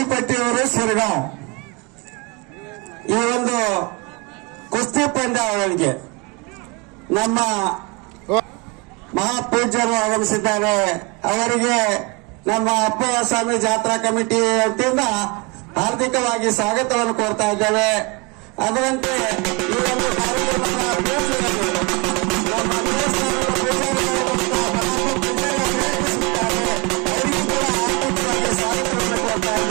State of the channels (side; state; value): left; quieter; 28.1 dB